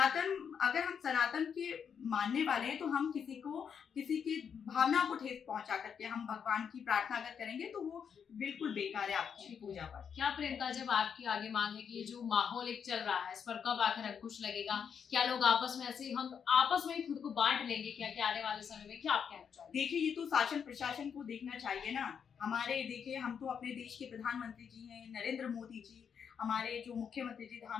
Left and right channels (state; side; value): quieter; right; 7.2 dB